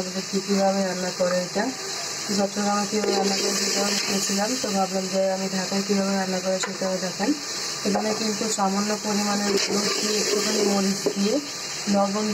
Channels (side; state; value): both; identical; correlation 1.00